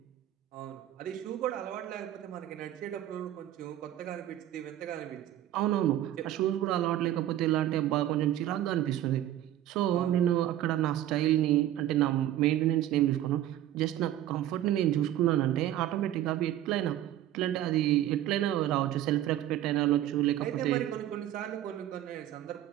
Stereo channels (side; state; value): left; quieter; 12.8 dB